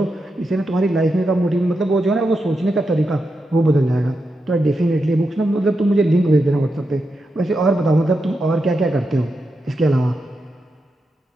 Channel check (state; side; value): normal; both; correlation 0.87